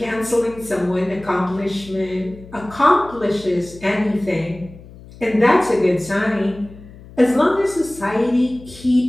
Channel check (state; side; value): noise; left; hum, 19 dB below the sound